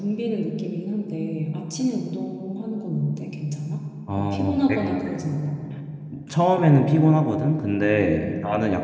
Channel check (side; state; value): both; identical; correlation 1.00